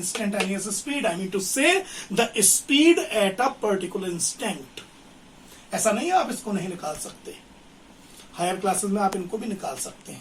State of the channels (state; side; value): identical; both; correlation 1.00